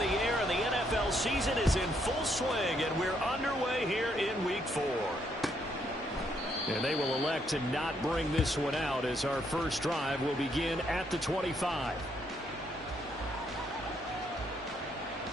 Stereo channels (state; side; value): normal; both; correlation 0.73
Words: air, and the NFL season is in full swing, and we're underway here in Week 4. And they will elect to not bring this one out, as our first drive will begin at the 25.